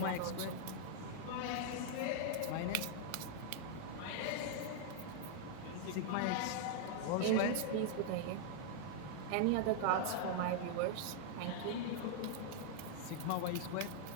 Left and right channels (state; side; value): different; both; correlation -0.01